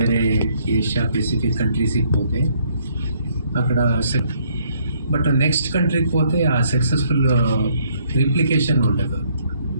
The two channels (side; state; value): both; inverted; correlation -0.67